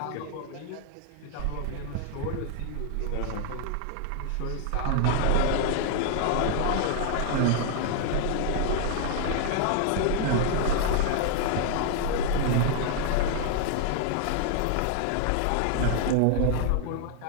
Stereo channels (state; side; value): different; both; correlation 0.00